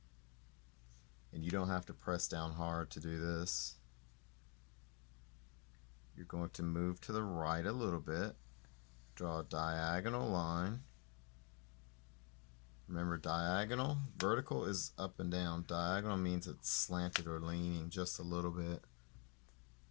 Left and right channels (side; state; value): right; quieter; 34.5 dB